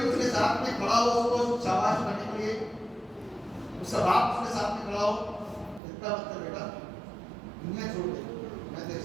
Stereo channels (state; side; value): drops out; left; at 5.8 s